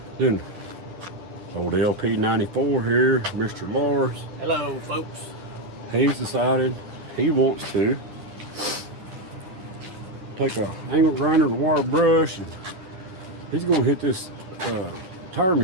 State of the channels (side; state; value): left; late; 10 ms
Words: Then old LP94 here, Mr. Lars. Hello folks. He's decided he wants to take a angle grinder and a wire brush, and he's going to hit this tire